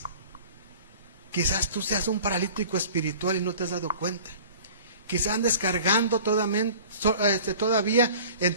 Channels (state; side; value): inverted; both; correlation -0.44